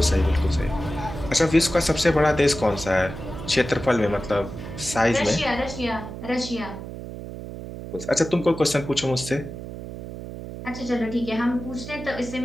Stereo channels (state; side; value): noise; right; hum, 10 dB below the sound